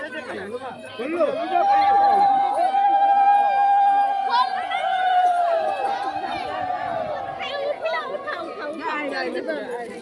দে খাইবো না বললো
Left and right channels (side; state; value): both; identical; correlation 1.00